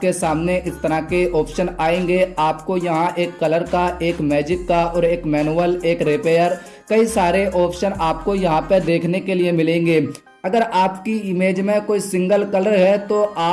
सामने इस तरह के ऑप्शन आएंगे। आपको यहाँ एक कलर का, एक मैजिक का और एक मैनुअल, एक रिपेयर, कई सारे ऑप्शन आपको यहाँ पे देखने के लिए मिलेंगे। अगर आपकी इमेज में कोई सिंगल कलर है तो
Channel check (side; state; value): both; identical; correlation 1.00